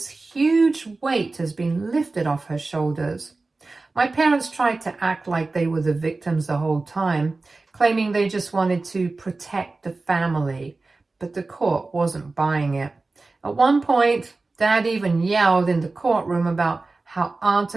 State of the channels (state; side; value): quieter; left; 3.5 dB